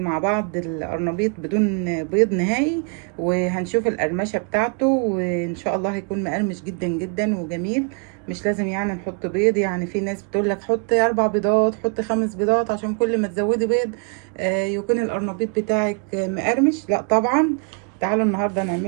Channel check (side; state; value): left; quieter; 38.1 dB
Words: مع بعض القرنبيط بدون بيض نهائي، وهنشوف القرمشة بتاعته، وان شاء الله هيكون مقرمش جدا جدا وجميل. مش لازم يعني نحط بيض، يعني في ناس بتقول لك حطي 4 بيضات، حطي 5 بيضات، عشان كل ما تزودي بيض يكون القرنبيط بتاعك مقرمش. لا طبعا. تعالوا النهارده